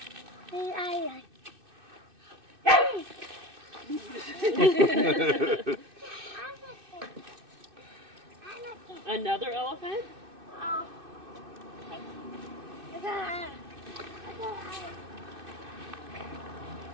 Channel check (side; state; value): left; late; 2.6 ms